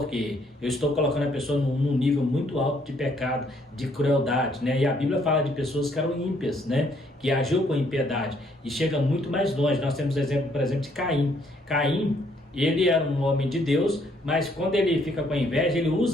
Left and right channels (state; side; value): normal; both; correlation 0.68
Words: eu estou colocando a pessoa num nível muito alto de pecado, de crueldade, né? E a Bíblia fala de pessoas que eram ímpias, né? Que agiu com impiedade e chega muito mais longe. Nós temos exemplo, por exemplo, de Caim. Caim, ele era um homem de Deus, mas quando ele fica com inveja, ele